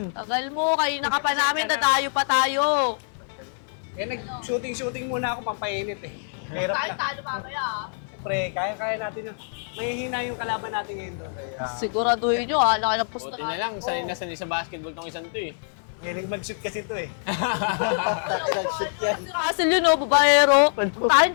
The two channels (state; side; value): silent; right; 55 dB below the other